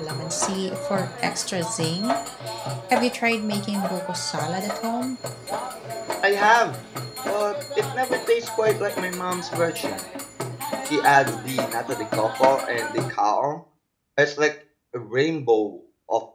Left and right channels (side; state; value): both; identical; correlation 1.00